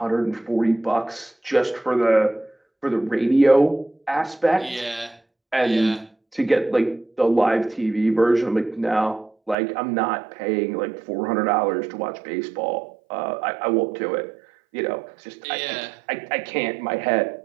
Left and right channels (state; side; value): drops out; left; at 9.6 s